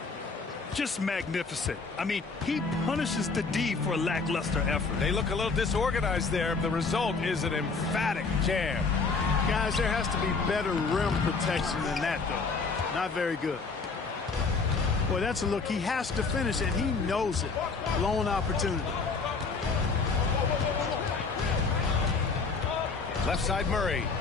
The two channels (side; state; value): right; quieter; 4.5 dB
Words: Just magnificent. I mean, he punishes the D for a lackluster effort. They look a little disorganized there. The result is an emphatic jam. Guys, there has to be better rim protection than that, though. Not very good. Boy, that's a look. He has to finish, and he knows it. Blown opportunity. Left side Murray.